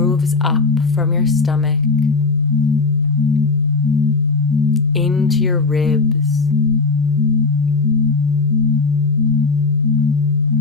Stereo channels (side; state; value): right; quieter; 4.0 dB